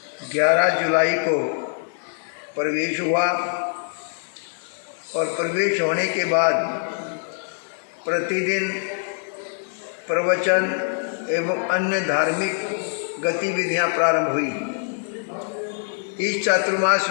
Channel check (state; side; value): silent; right; digital silence